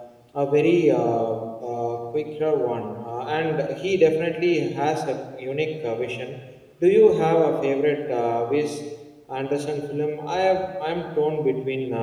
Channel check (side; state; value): both; identical; correlation 1.00